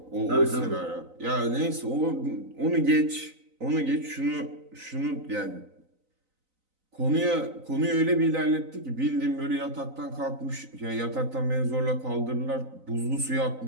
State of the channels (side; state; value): left; late; 3.9 ms